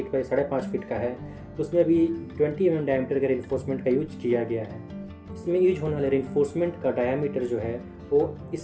बाई 5.5 फीट का है, उसमें भी 20 mm डायमीटर के रीइंफोर्समेंट का यूज किया गया है। इसमें यूज होने वाले रीइंफोर्समेंट का डायमीटर जो है वो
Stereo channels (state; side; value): identical; both; correlation 1.00